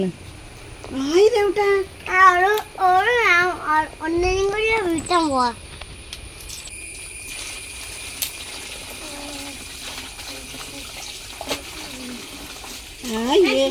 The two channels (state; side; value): identical; both; correlation 1.00